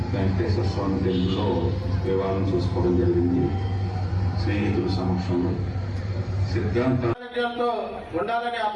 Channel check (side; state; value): both; identical; correlation 1.00